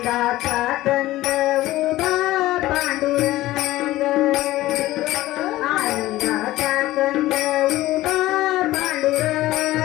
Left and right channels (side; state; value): right; quieter; 16.5 dB